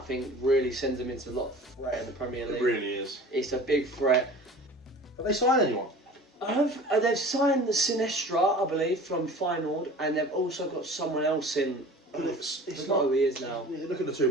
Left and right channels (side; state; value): both; normal; correlation 0.42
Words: really sends them into a lot of threat in the Premier League. It really is. It's a big threat. Have they signed anyone? They've signed the Sinestra, I believe, from Feyenoord, and they've also got someone else in. It's not who he is now. You look at the two